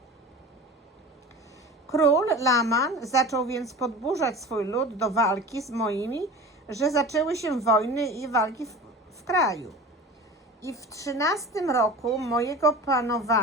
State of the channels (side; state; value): both; normal; correlation 0.36